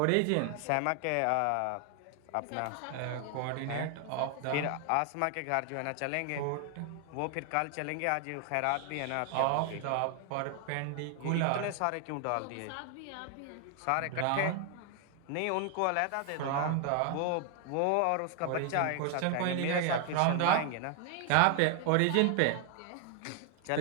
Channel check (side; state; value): both; different; correlation 0.00